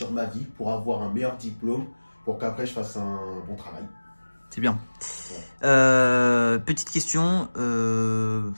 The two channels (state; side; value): inverted; both; correlation -1.00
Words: ma vie pour avoir un meilleur diplôme pour qu'après je fasse un bon travail. C'est bien. Ouais. Petite question,